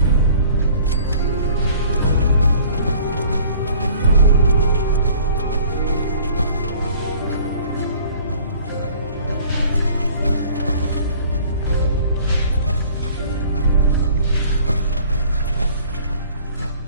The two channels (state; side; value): inverted; both; correlation -0.51